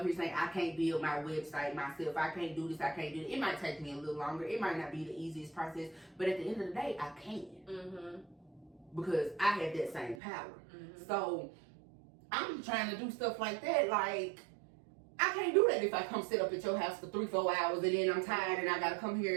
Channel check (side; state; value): left; drops out; at 10.2 s